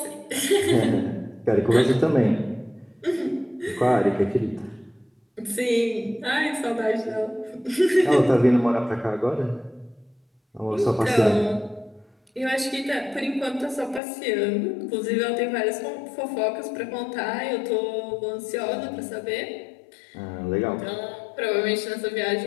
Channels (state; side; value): drops out; right; at 14.0 s